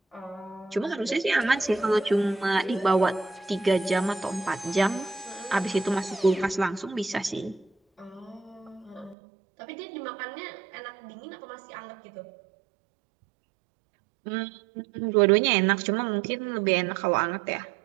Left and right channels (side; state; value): left; drops out; at 9.2 s